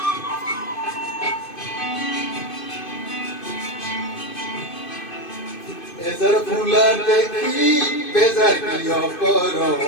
এজার ফুলা দেখি বেজার কিয় কর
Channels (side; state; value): right; late; 2.5 ms